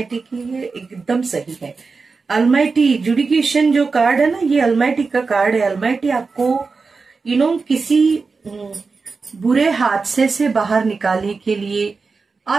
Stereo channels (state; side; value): quieter; left; 4.5 dB